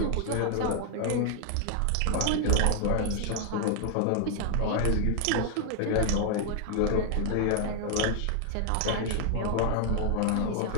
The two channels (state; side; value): different; both; correlation 0.00